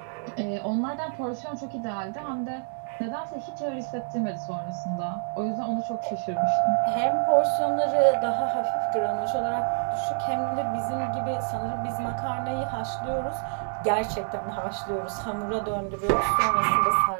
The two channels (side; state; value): left; silent; 57 dB below the other